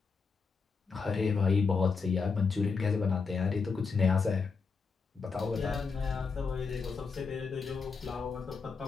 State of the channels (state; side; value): quieter; right; 5.0 dB